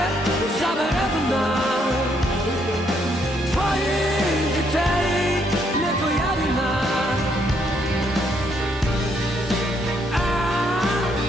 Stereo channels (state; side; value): normal; both; correlation 0.72